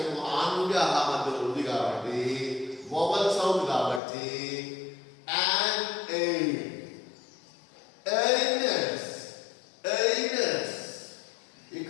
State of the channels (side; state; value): right; drops out; at 4.0 s